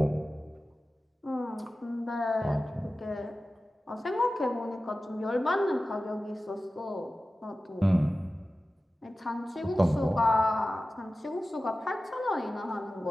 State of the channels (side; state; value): both; normal; correlation 0.95